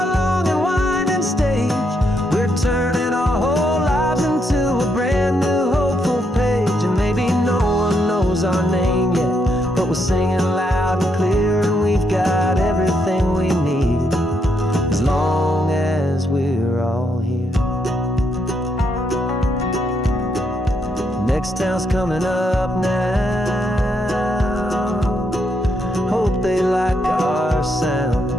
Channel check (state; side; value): normal; both; correlation 0.77